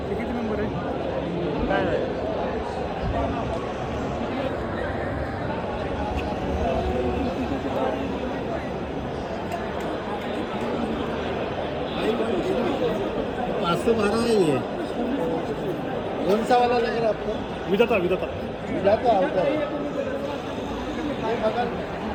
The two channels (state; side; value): identical; both; correlation 1.00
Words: किती नंबर आहे काय नाही. कौन सा वाला लग रहा है आपको विदाता